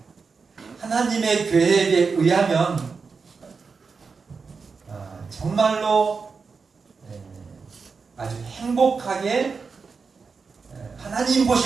하나님의 계획에 의하면 정말로 아주 행복하게 하나님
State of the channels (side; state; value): left; quieter; 5.0 dB